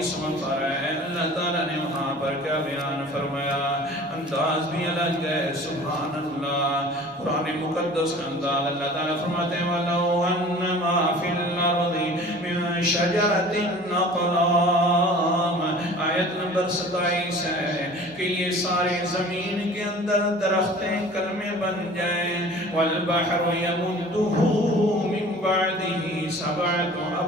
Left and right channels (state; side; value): normal; both; correlation 0.44